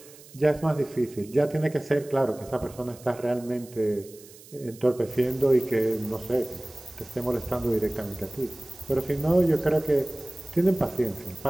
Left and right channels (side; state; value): right; noise; hiss, 21 dB below the sound